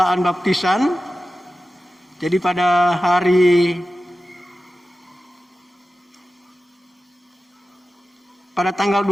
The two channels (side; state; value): both; normal; correlation 0.94